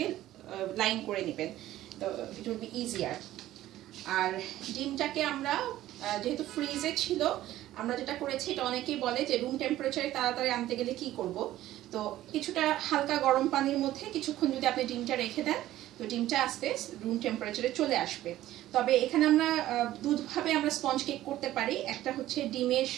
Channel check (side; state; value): left; quieter; 14.3 dB